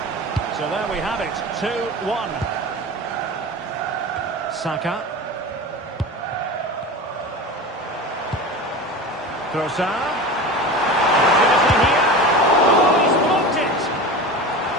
So there we have it, 2-1. Saka. Trossard. Opportunity here. Oh, he's blocked it.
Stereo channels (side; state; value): both; normal; correlation 0.31